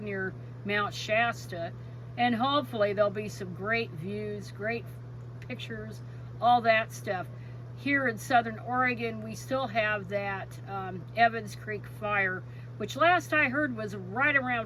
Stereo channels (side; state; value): both; identical; correlation 1.00